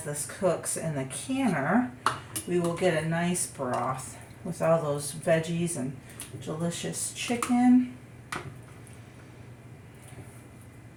this cooks in the canner, we will get a nice broth with all those veggies and delicious chicken.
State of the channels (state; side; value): identical; both; correlation 1.00